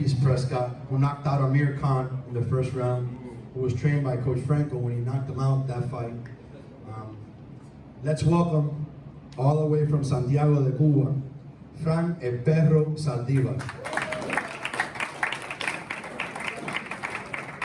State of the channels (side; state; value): both; identical; correlation 1.00